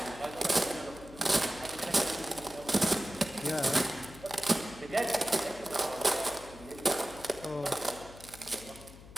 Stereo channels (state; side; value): noise; left; hum, 18 dB below the sound